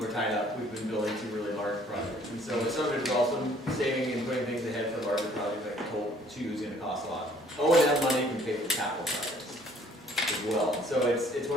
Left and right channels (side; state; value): both; normal; correlation 0.59